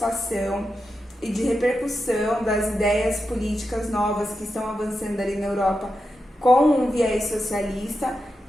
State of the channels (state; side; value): normal; both; correlation 0.88